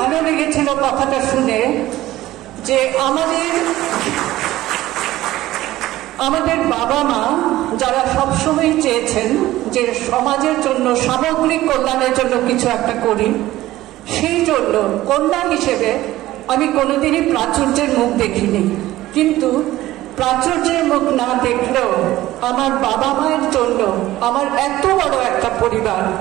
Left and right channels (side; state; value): left; quieter; 15.8 dB